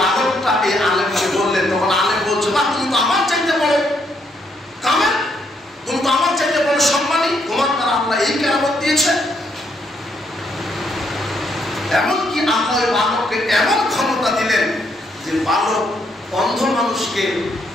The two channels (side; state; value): both; normal; correlation 0.74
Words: এই আলেমকে বললেন। তখন আলেম বলছে বা তুমি তো আমার চাইতে বড় কামেল, তুমি তো আমার চাইতে বড় সম্মানী, তোমার দ্বারা আল্লাহ এই কেরামত দিয়েছে। এমনকি আল্লাহ ওই বালককে এমন ক্ষমতা দিলেন যে বালক অন্ধ মানুষকে